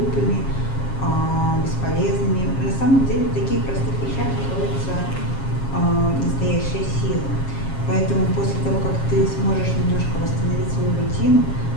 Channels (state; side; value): late; right; 7.4 ms